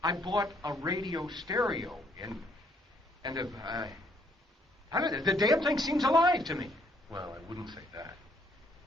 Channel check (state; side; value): normal; both; correlation 0.67